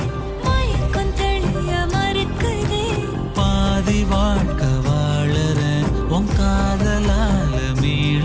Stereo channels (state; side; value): identical; both; correlation 1.00